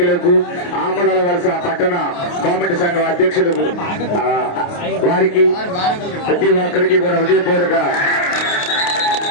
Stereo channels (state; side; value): late; right; 28 ms